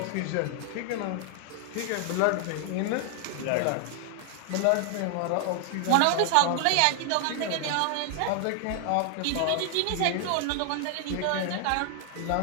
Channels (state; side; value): different; both; correlation 0.00